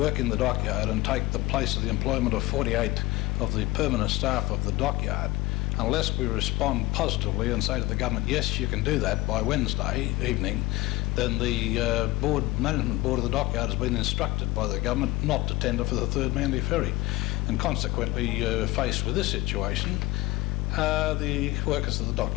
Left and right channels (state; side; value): quieter; right; 20.3 dB